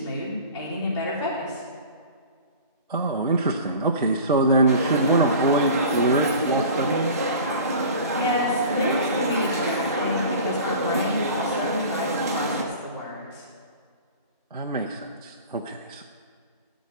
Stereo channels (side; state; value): both; inverted; correlation -0.39